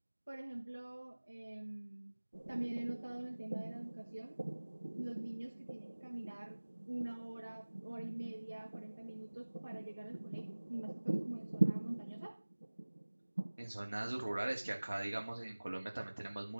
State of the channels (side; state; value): both; inverted; correlation -1.00